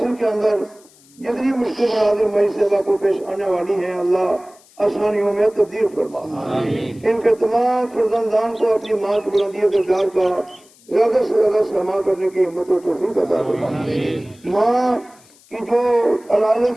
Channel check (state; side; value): noise; left; hiss, 28 dB below the sound